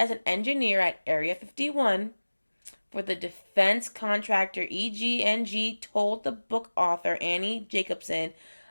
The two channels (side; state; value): both; inverted; correlation -1.00